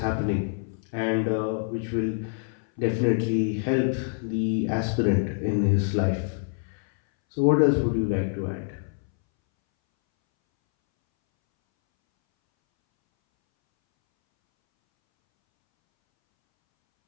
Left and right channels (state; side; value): silent; right; 61 dB below the other